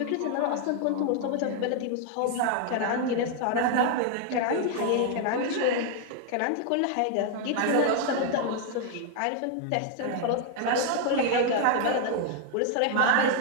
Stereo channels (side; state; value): both; different; correlation 0.00